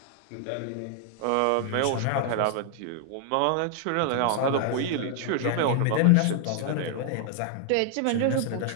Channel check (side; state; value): both; different; correlation 0.00